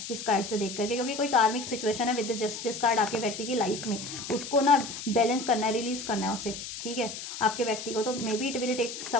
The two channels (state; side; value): noise; left; hiss, 8 dB below the sound